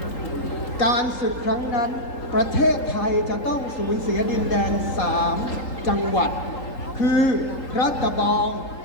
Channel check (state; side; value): late; right; 3.8 ms